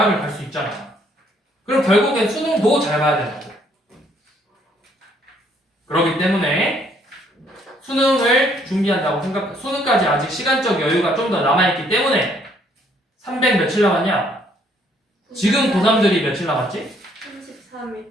갈 수 있잖아. 그럼 결국엔 수능도 잘 봐야 된다고. 그렇기 때문에 수능을 준비한다고 수능까지 아직 시간적 여유가 좀 더 남아있기 때문에 300 며칠 남았냐? 지금 고3들이 며칠 남았지? 33일.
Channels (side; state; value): both; normal; correlation 0.66